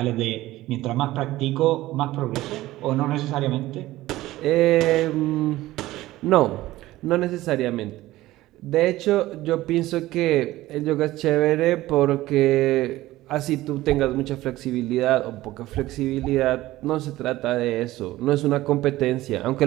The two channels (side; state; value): left; quieter; 16.7 dB